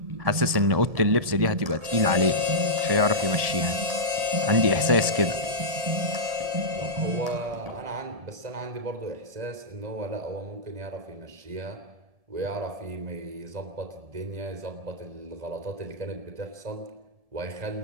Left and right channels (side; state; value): left; late; 1.7 ms